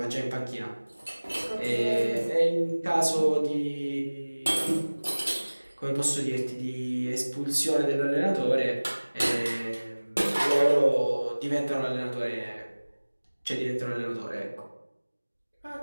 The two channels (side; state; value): both; inverted; correlation -1.00